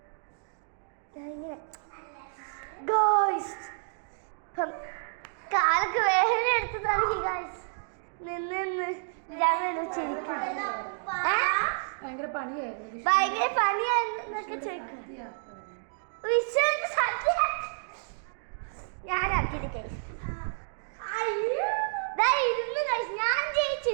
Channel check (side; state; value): left; silent; digital silence